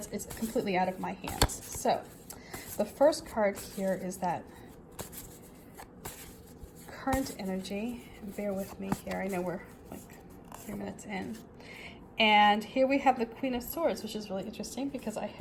completely out of my hands. So the first card here is that current energy. Bear with me here. I know we're like 3 minutes in. And here we have the Queen of Swords, which is really interesting because I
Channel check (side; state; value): both; identical; correlation 1.00